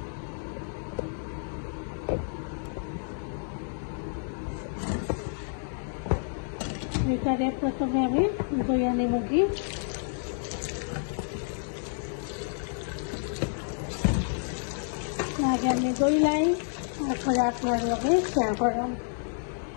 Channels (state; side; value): silent; right; 57 dB below the other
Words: এটারে প্রথমে আমি দইয়া নেব কি আগে আমি দইলাই তারপরে আপনার লগে শেয়ার করলাম।